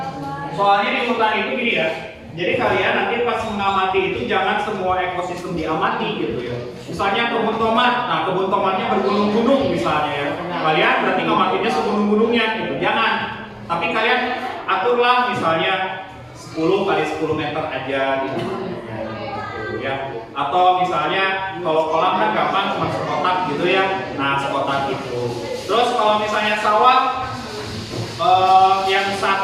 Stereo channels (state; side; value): identical; both; correlation 1.00